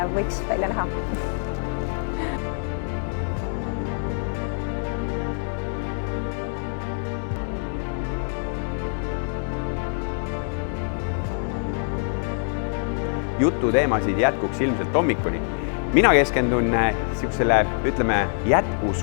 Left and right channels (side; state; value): right; silent; 62 dB below the other